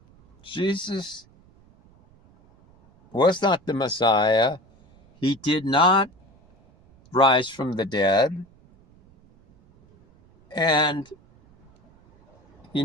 Jesus was not the Messiah. He did not rise from the dead. And he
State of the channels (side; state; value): right; noise; rumble, 29 dB below the sound